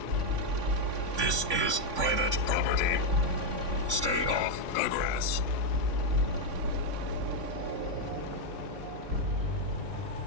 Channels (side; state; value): left; late; 3.5 ms